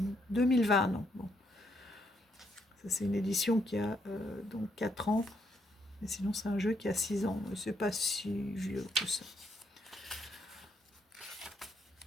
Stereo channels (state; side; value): normal; both; correlation 0.74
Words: 2020. Non, bon. Ça, c'est une édition qui a donc 4 ans. Mais sinon, c'est un jeu qui a 6 ans. C'est pas si vieux que ça.